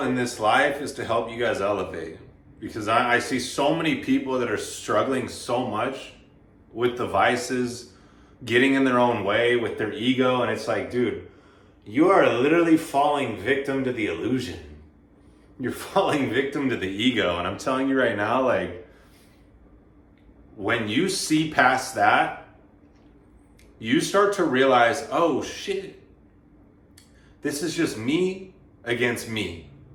in this life is to help you guys elevate because I see so many people that are struggling so much with the vices, getting in their own way with their ego. And it's like, dude, you are literally falling victim to the illusion. You're falling victim to the ego. And I'm telling you right now, like, when you see past that, you start to realize, oh shit, this is just me against me.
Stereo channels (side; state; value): both; identical; correlation 1.00